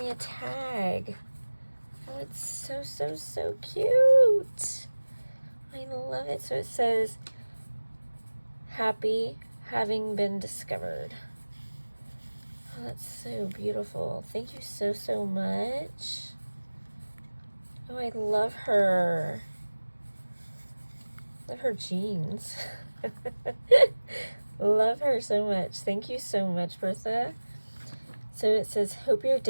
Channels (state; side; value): inverted; both; correlation -1.00